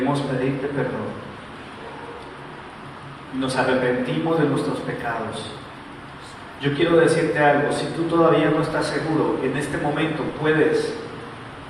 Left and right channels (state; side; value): identical; both; correlation 1.00